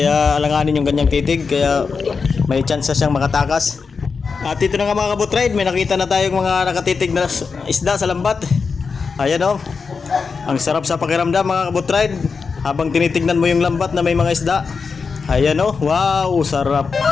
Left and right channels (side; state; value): right; quieter; 5.1 dB